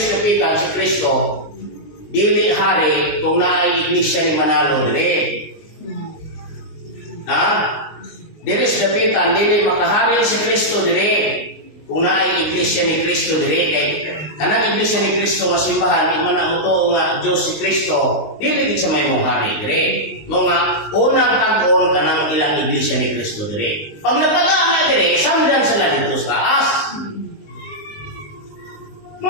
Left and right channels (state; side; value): late; right; 19 ms